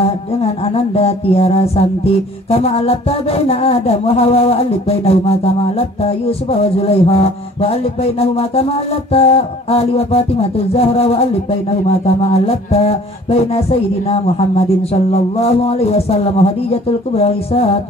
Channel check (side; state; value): both; normal; correlation 0.51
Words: dengan Ananda Tiara Santi kama alafta baina Adam wa Hawa wa alif bainahuma kama alafta Yusuf wa Zulaiha wa alif bainahuma kama alafta Ali wa Fatimah Zahra wa alif bainahuma kama alafta baina Sayyidina Muhammadin sallallahu alaihi wasallam wa Khadijatul Kubra